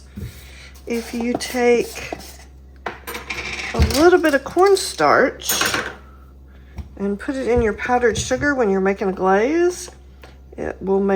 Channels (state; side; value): identical; both; correlation 1.00